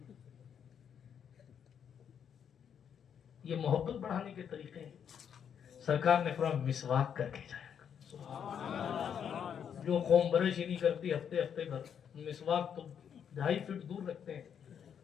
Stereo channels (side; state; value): right; quieter; 8.1 dB